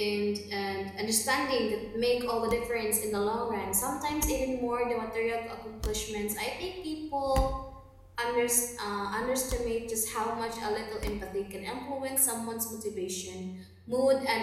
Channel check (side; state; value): both; identical; correlation 1.00